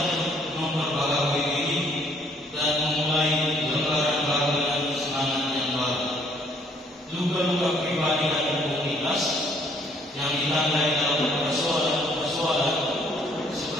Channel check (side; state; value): both; normal; correlation 0.64